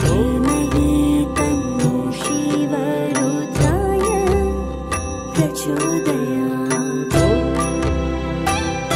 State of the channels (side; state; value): both; identical; correlation 1.00